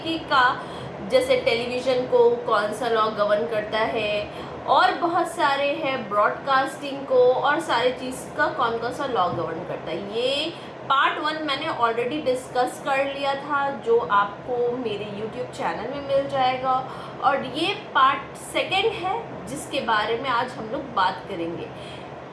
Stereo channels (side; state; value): both; identical; correlation 1.00